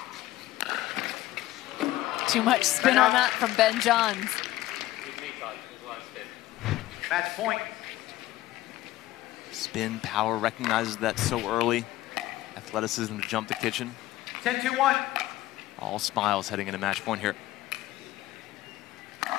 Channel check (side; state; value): right; quieter; 16.1 dB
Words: Too much spin on that from Ben Johns. Match point. Spin, power, recognizes that so early. Athleticism to jump the kitchen. 10-2-1. All smiles heading into match point here.